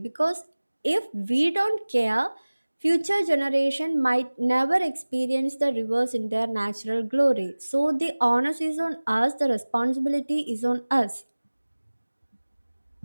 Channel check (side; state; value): both; inverted; correlation -1.00